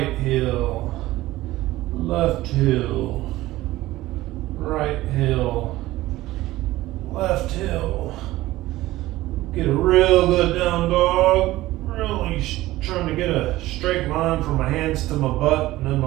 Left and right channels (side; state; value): left; quieter; 16.9 dB